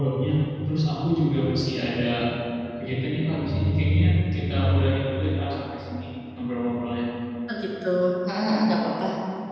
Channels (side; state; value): both; identical; correlation 1.00